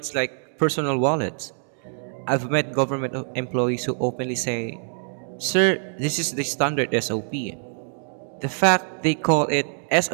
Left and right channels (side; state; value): left; silent; 61 dB below the other